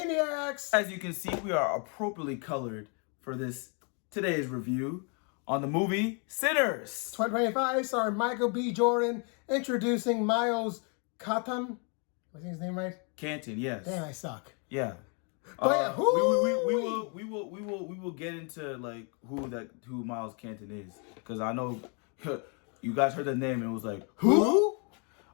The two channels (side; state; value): right; quieter; 36.8 dB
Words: As you can see, we are appropriately colored for today's review on the movie Sinners. 2025, starring Michael B. Jordan, introducing Miles Cotton. Was his name right? Canton, yes. Damn, I suck. Yeah. But yeah, we will get into like who Miles Canton is, because I know you guys heard the name and it was like Who?